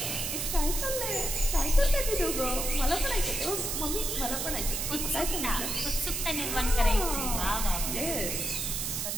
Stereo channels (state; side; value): noise; right; hiss, 1 dB below the sound